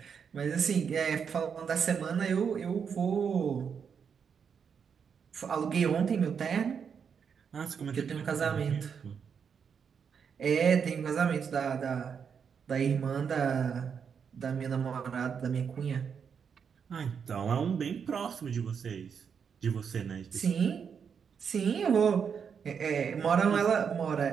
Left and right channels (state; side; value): quieter; left; 6.8 dB